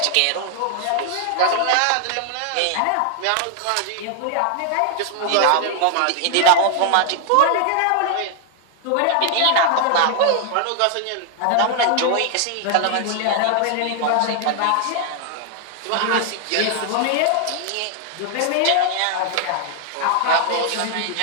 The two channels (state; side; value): different; both; correlation 0.00